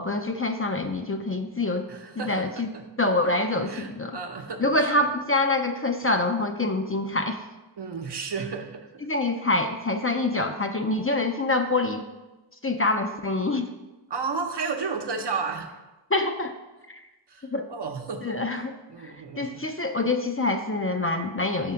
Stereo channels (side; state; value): both; normal; correlation -0.04